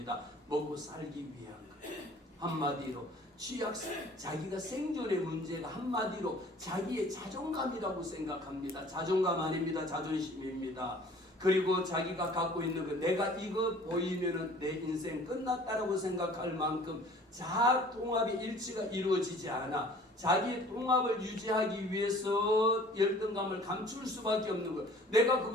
먹고 살기 위한 거예요. 한마디로 자기가 생존의 문제가 한마디로 자기의 자존감이라고 생각합니다. 자존감 아닙니다. 자존심입니다. 그리고 자기가 갖고 있는 거, 내가 이거 보이면은 내 인생 끝났다라고 생각할 만큼 자아 통합의 일치가 이루어지지 않아. 자기 통합을 유지하기 위해서 열등감을 감출 수밖에 없는 거. 내가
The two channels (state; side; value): normal; both; correlation 0.50